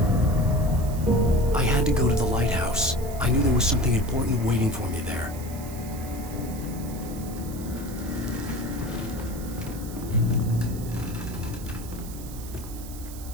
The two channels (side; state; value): right; noise; hiss, 16 dB below the sound